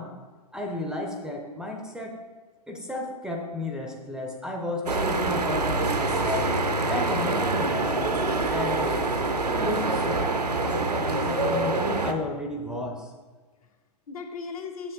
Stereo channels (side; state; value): both; normal; correlation 0.04